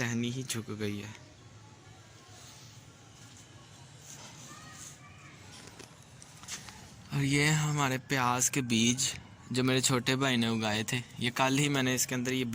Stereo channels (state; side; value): identical; both; correlation 1.00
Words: ही झुक गई है। और ये हमारे प्याज के बीज जो मेरे छोटे भाई ने उगाए थे, ये कल ही मैंने इसके अंदर ये